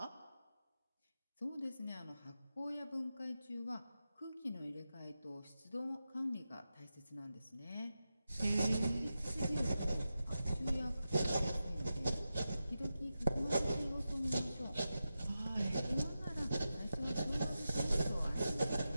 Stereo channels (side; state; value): both; inverted; correlation -0.91